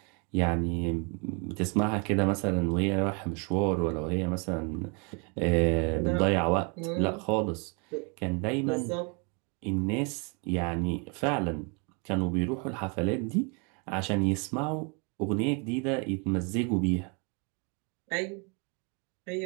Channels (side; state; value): left; quieter; 34.3 dB